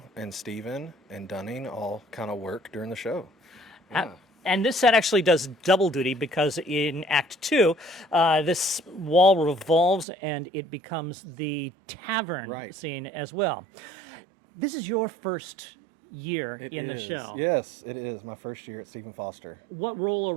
and Steven and Dunning all kind of work during the show. Uh, Yeah. And this set actually does double duty because in Act Two, this wall revolves and it becomes the tavern Right. scene as well. This is your first year It in the is. show. Yes, it is my first year at Stephen Foster. What role or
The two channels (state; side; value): drops out; left; at 10.1 s